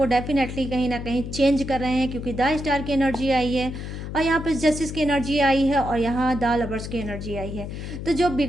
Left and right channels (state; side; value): noise; left; hum, 7 dB below the sound